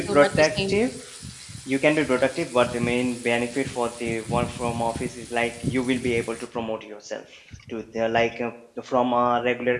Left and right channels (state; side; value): identical; both; correlation 1.00